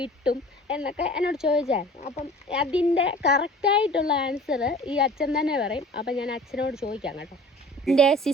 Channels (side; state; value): both; normal; correlation 0.44